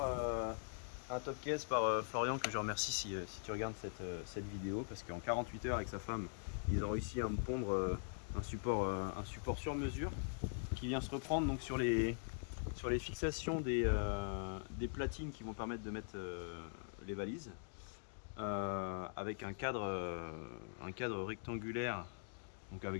un top case par Florian, que je remercie si tu regardes cette vidéo, parce qu'en 48 heures avec sa femme ils ont réussi à me pondre un support sur mesure qui vient se reprendre donc sur les fixations des platines qui vont permettre de mettre les valises, avec un cadre rectangulaire, donc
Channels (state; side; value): silent; right; digital silence